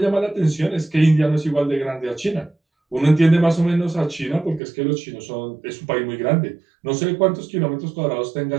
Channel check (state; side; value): drops out; left; at 4.6 s